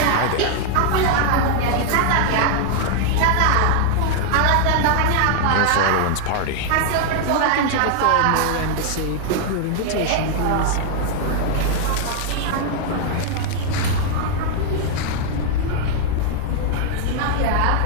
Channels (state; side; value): different; both; correlation 0.00